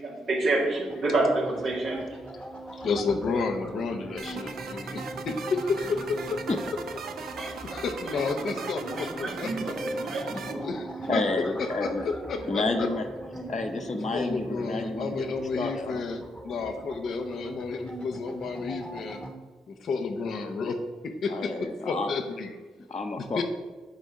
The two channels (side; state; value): both; normal; correlation 0.77